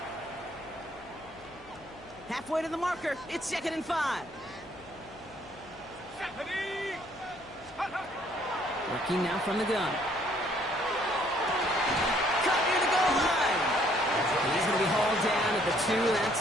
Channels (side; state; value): left; noise; hum, 24 dB below the sound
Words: Halfway to the marker, it's 2nd and 5. Working now from the gun. Cut near the goal line. He's going to be hauled down at the 2, and that